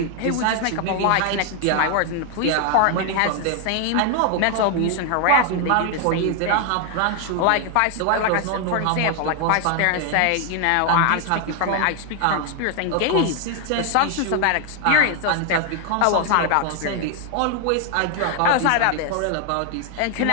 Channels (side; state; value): both; different; correlation 0.00